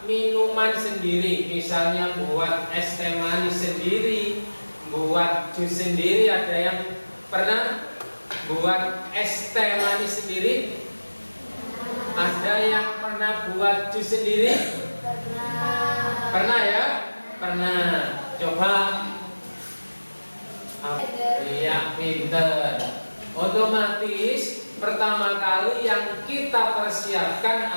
minuman sendiri, misalnya buat es teh manis sendiri, buat jus sendiri. Ada yang pernah buat es teh manis sendiri? Ada yang pernah buat jus sendiri? Pernah ya? Pernah. Coba. Iya, pinter. Otomatis pertama kali yang kita persiapkan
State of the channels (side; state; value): both; inverted; correlation -1.00